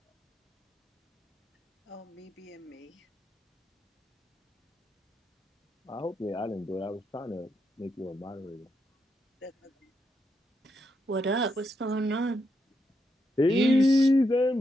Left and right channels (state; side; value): normal; both; correlation 0.82